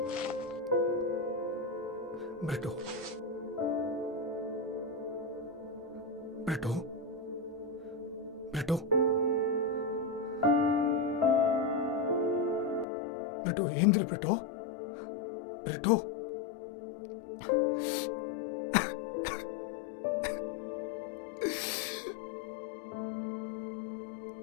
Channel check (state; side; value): drops out; right; at 12.9 s